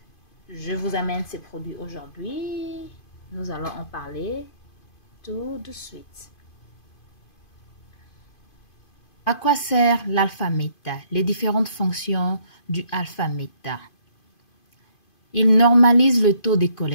vous amène ces produits aujourd'hui? Nous allons en parler tout de suite. À quoi sert l'Alpha Meta? Les différentes fonctions du Alpha Meta. Il normalise le taux de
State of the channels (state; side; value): late; right; 2.5 ms